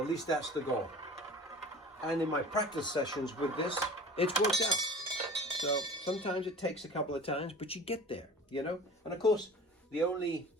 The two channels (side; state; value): both; normal; correlation 0.40